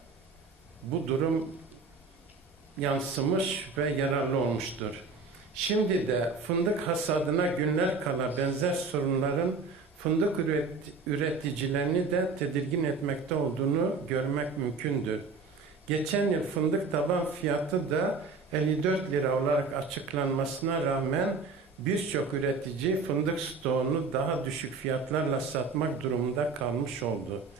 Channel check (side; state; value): left; quieter; 4.3 dB